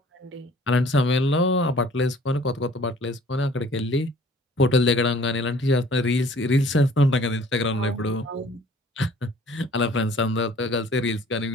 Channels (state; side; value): normal; both; correlation 0.53